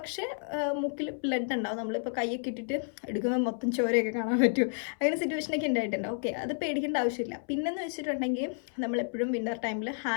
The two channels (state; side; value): silent; right; 57 dB below the other